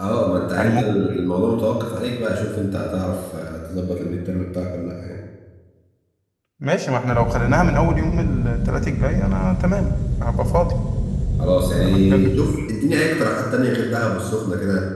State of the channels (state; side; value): identical; both; correlation 1.00